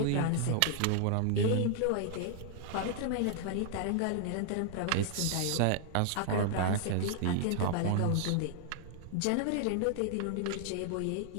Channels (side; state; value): both; different; correlation 0.00